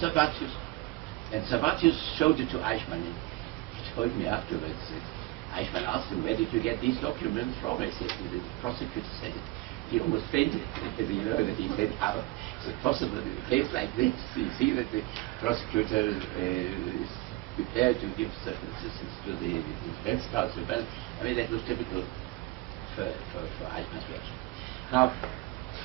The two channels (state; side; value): quieter; left; 20.1 dB